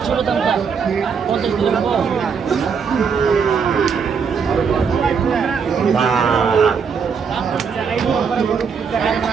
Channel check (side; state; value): left; quieter; 6.1 dB